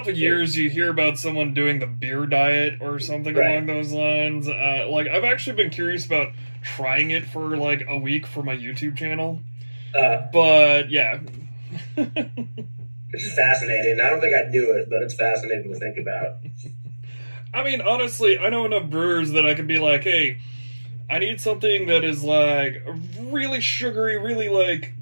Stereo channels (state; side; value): inverted; both; correlation -1.00